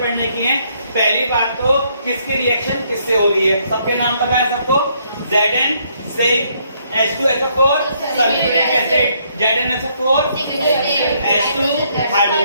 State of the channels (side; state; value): both; inverted; correlation -0.70